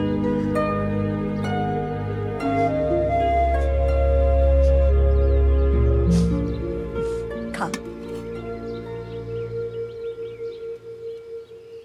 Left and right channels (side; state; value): both; identical; correlation 1.00